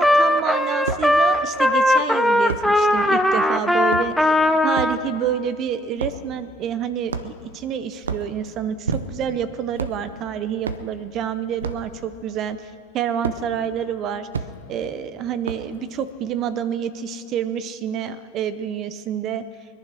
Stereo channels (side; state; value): both; normal; correlation 0.63